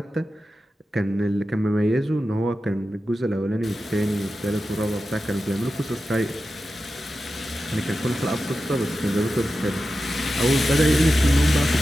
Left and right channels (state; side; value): normal; both; correlation 0.92